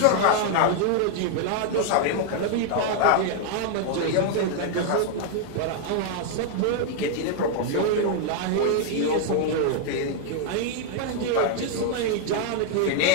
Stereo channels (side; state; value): both; different; correlation 0.00